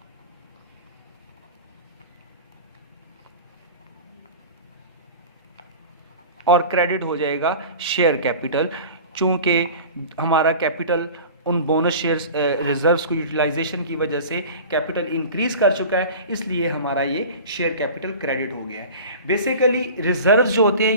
और क्रेडिट हो जाएगा शेयर कैपिटल। चूंकि हमारा कैपिटल उन बोनस शेयर्स रिजर्व्स को यूटिलाइजेशन की वजह से कैपिटल इंक्रीज कर चुका है, इसलिए हमारा ये शेयर कैपिटल क्रेडिट हो गया है। बेसिकली रिजर्व्स जो होते हैं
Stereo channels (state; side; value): inverted; both; correlation -0.37